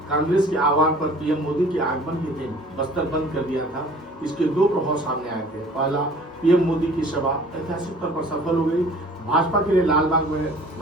कांग्रेस के आह्वान पर पीएम मोदी के आगमन के दिन बस्तर बंद कर दिया था। इसके दो प्रभाव सामने आए थे। पहला, पीएम मोदी की सभा ऐतिहासिक तौर पर सफल हो गई। भाजपा के लिए लालबाग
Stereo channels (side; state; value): both; normal; correlation 0.49